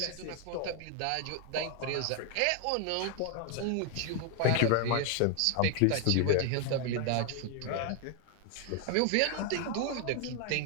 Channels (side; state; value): both; different; correlation 0.01